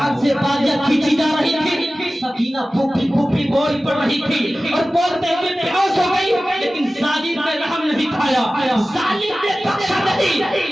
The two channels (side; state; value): both; normal; correlation 0.96